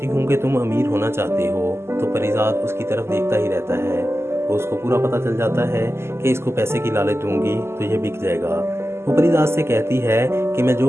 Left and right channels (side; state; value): left; late; 0.12 ms